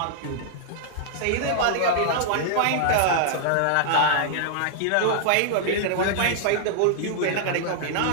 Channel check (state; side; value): different; both; correlation -0.01